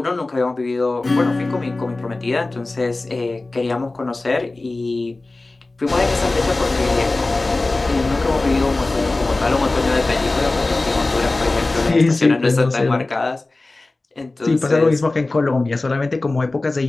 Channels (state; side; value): quieter; right; 3.1 dB